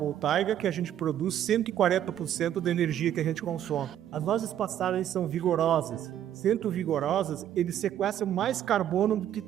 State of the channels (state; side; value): quieter; left; 10.9 dB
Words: que a gente produz 140% da energia que a gente consome. As nossas pastagens são vigorosas. Sendo vigorosas, eles sequestram mais carbono do que